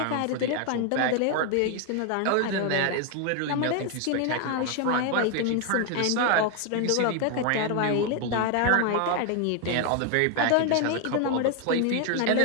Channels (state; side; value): different; both; correlation 0.01